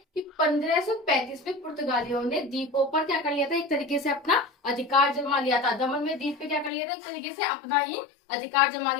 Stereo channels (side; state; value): right; drops out; at 6.7 s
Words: कि 1535 में पुर्तगालियों ने द्वीपों पर क्या कर लिया था, एक तरीके से अपना अधिकार जमा लिया था। दमन में द्वीप पे क्या कर लिया था, एक तरीके से अपना ही अधिकार जमा